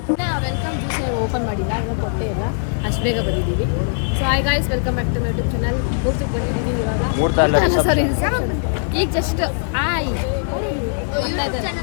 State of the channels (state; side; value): silent; right; digital silence